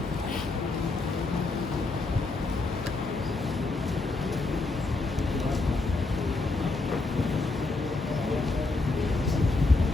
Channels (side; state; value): right; quieter; 3.4 dB